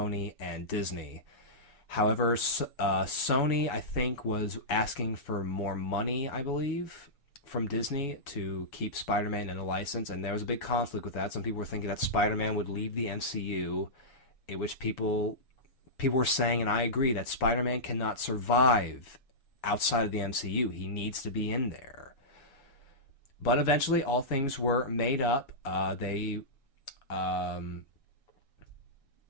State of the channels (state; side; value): late; right; 7.1 ms